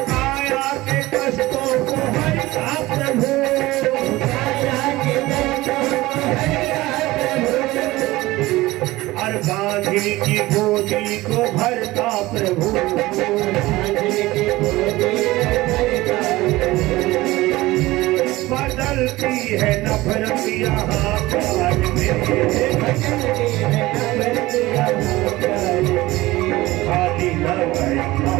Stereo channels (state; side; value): quieter; left; 18.8 dB